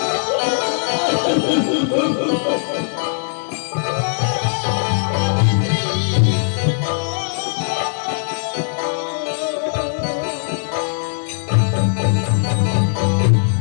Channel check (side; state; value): right; silent; 66 dB below the other